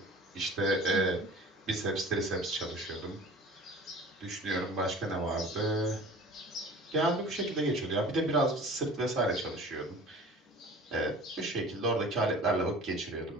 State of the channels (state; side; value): normal; both; correlation 0.42